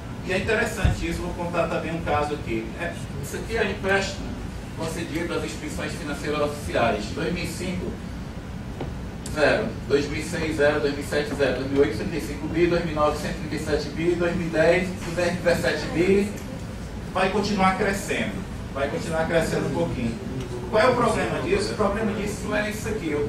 E é interessante isso, vou contar também um caso aqui. Isso aqui é empréstimo concedido às instituições financeiras oficiais. 2005, 0. 2006, 0. 2007, 0. 2008, 35 bi. 2009, 137 bi. 2010, 217 bi. Vai continuar crescendo. Vai continuar crescendo um pouquinho. Qual é o problema disso? O problema disso não é isso aqui. Eu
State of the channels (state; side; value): identical; both; correlation 1.00